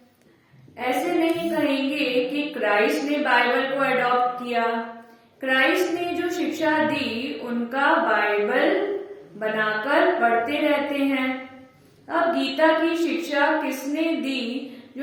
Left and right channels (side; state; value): both; identical; correlation 1.00